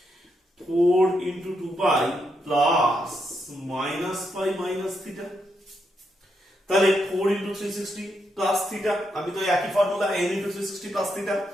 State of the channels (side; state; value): both; normal; correlation 0.81